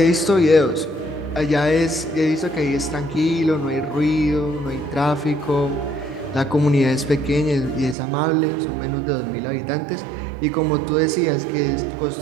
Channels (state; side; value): drops out; left; at 8.0 s